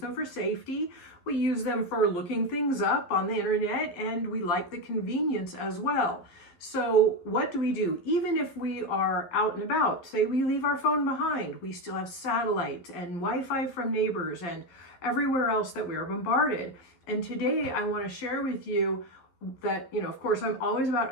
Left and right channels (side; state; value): right; late; 12 ms